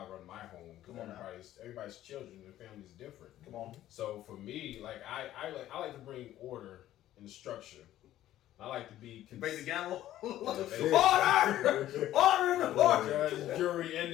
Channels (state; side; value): quieter; right; 13.4 dB